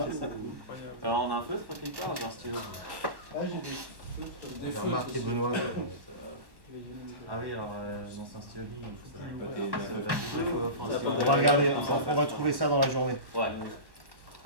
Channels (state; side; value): late; left; 1.1 ms